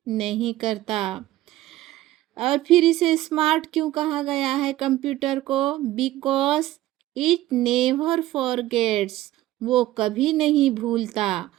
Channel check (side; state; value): left; quieter; 15.5 dB